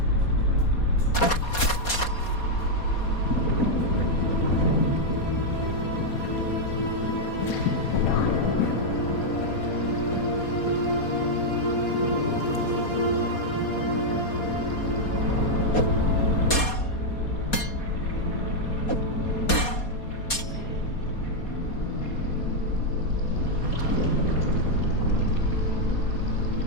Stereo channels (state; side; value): late; right; 4.2 ms